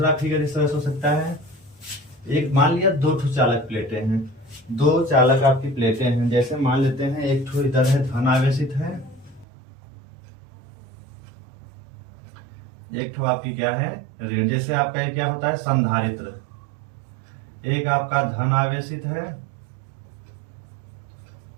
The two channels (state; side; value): drops out; left; at 9.5 s